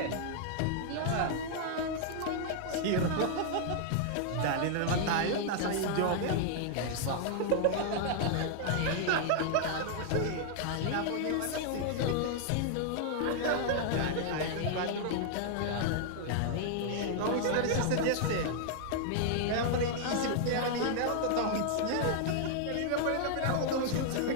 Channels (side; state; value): both; different; correlation -0.01